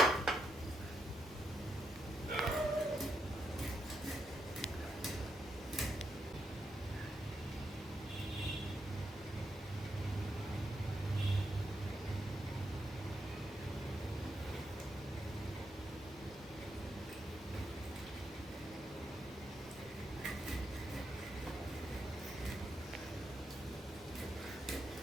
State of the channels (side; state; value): both; normal; correlation 0.81